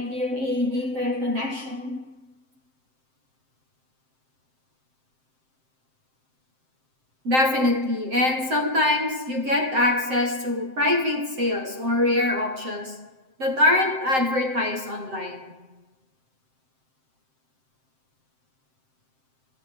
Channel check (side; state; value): left; late; 7.6 ms